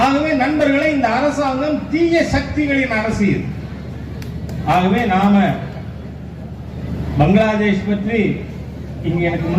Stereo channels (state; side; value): identical; both; correlation 1.00